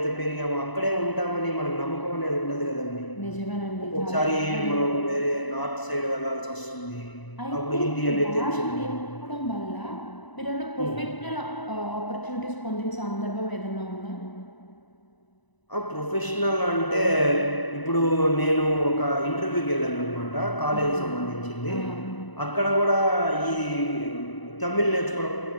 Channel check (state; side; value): late; right; 1.0 ms